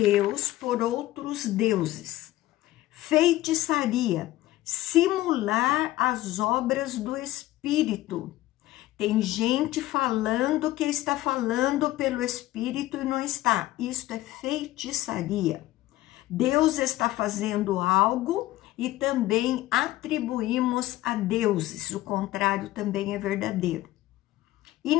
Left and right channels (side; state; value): right; quieter; 16.2 dB